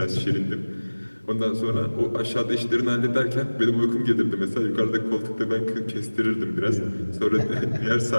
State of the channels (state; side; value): inverted; both; correlation -1.00